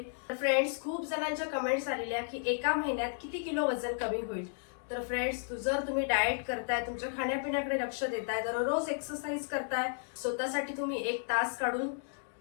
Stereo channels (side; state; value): right; silent; digital silence